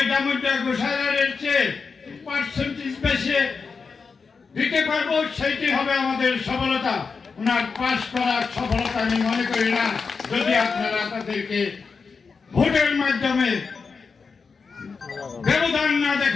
ডামুড্ডা গোসাইয়ের চেয়ে পার্সেন্টেজ বেশি দিতে পারবো, সেইটি হবে আমাদের সফলতা। ওনার পাশ করার সফলতা আমি মনে করি না, যদি আপনারা তাদেরকে ভোটের মাধ্যমে ব্যবধান না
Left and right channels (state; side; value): quieter; right; 5.1 dB